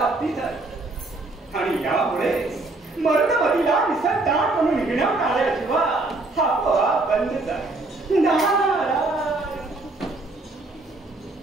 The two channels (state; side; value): quieter; left; 3.1 dB